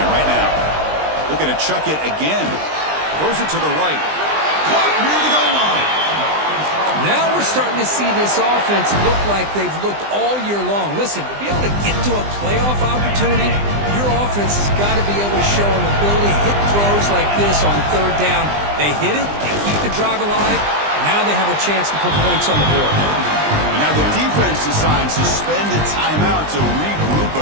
right now. Looking to chuck it again. Throws it to the right. Caught near the goal line. Now we're starting to see this offense look like they've looked all year long. Listen, to be able to get to a playoff opportunity, your offense has got to be able to show an ability to hit throws like this on third down. They hit it, they keep the drive alive. Now they have a chance to put points on the board. And now the defense decides to spend a timeout to regroup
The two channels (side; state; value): left; late; 20 ms